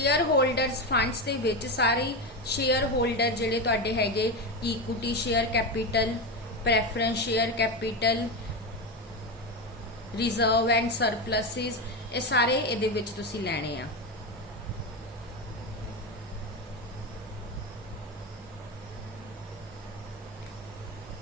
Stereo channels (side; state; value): both; normal; correlation 0.15